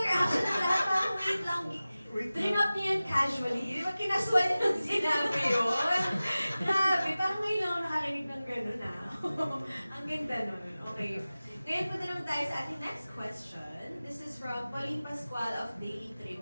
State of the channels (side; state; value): both; inverted; correlation -0.97